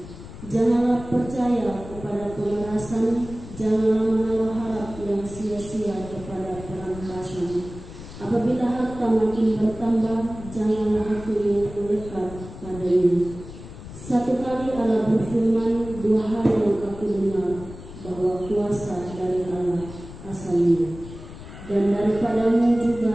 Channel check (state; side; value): noise; left; rumble, 14 dB below the sound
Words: Janganlah percaya kepada pemerasan, janganlah menaruh harap yang sia-sia kepada perampasan. Apabila harta makin bertambah, janganlah hati yang melekat padanya. Satu kali Allah berfirman, dua hal yang aku dengar, bahwa kuasa dari Allah asalnya. Dan daripadamu